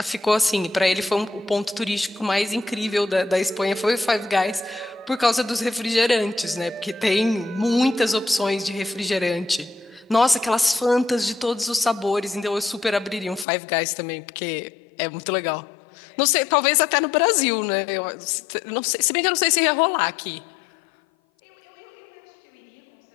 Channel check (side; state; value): right; drops out; at 13.5 s